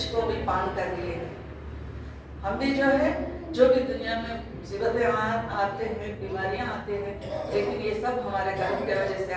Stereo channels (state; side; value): identical; both; correlation 1.00